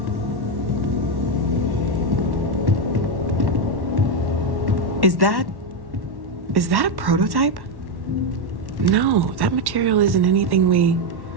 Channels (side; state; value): left; late; 1.1 ms